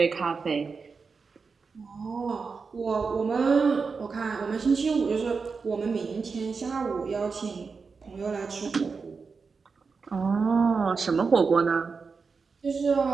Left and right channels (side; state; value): left; quieter; 4.9 dB